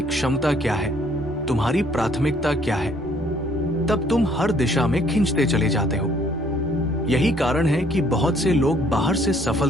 क्षमता क्या है, तुम्हारी प्राथमिकता क्या है, तब तुम हर दिशा में खींचते चले जाते हो। यही कारण है कि बहुत से लोग बाहर से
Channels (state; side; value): normal; both; correlation 0.62